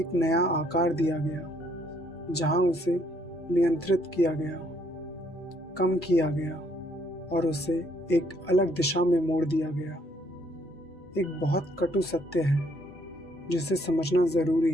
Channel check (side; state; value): both; normal; correlation 0.68